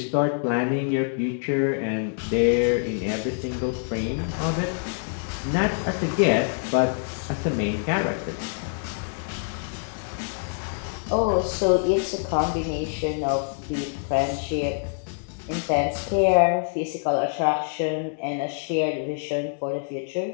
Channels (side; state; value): right; silent; digital silence